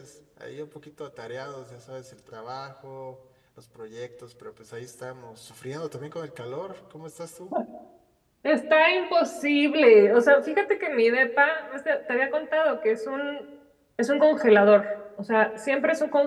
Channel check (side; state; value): both; identical; correlation 1.00